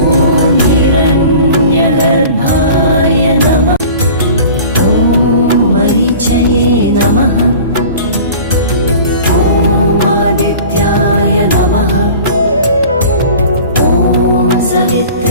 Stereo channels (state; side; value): inverted; both; correlation -0.42